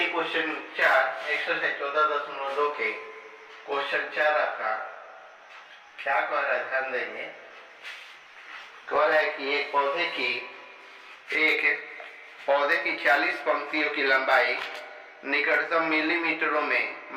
क्वेश्चन 4 एक्सरसाइज 14.2 के क्वेश्चन 4 आपका क्या कह रहा है, ध्यान देंगे। कह रहा है कि एक पौधे की 40 पंक्तियों की लंबाई निकटतम मिलीमीटरों में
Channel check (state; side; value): identical; both; correlation 1.00